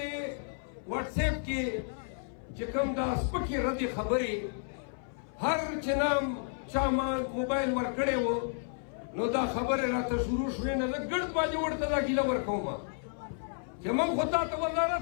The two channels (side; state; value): right; silent; 57 dB below the other